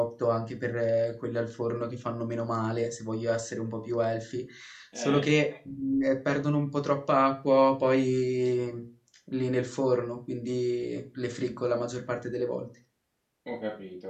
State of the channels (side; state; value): both; identical; correlation 1.00